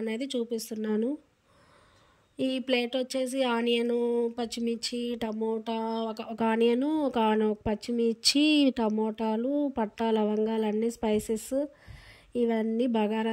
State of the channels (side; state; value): both; identical; correlation 1.00